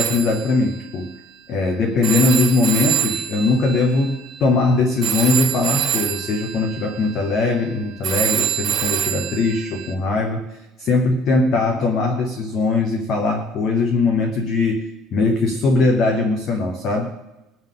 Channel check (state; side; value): normal; both; correlation 0.56